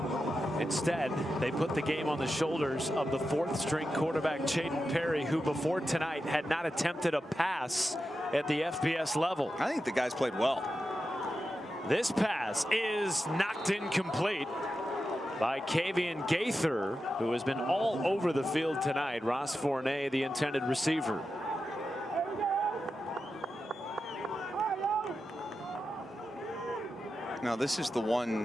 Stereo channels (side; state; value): both; normal; correlation 0.90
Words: Instead, they put the game on the shoulders of the 4th-string quarterback, Chayden Perry, who before tonight had not attempted a pass at the FBS level. I think the guys played well. This pass is knocked incomplete by Kavian Gaither, who has been all over the field tonight. Ross Fournette, the intended receiver. Now, this is the